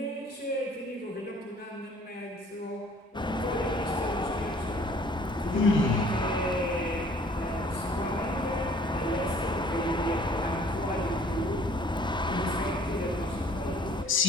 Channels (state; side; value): normal; both; correlation 0.55